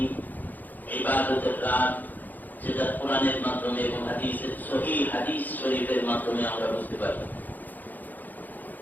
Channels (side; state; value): right; late; 0.084 ms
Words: ইবাদতের রাত, যেটা কোরআনের মাধ্যমে এবং হাদিসের সহিহ হাদিস শরীফের মাধ্যমে আমরা বুঝতে পারি।